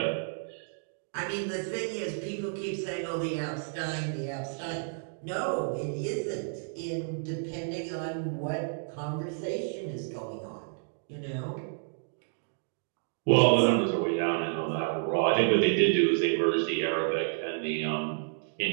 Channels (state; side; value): silent; left; digital silence